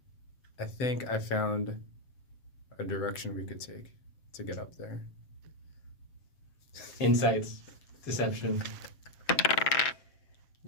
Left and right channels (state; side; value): late; right; 7.5 ms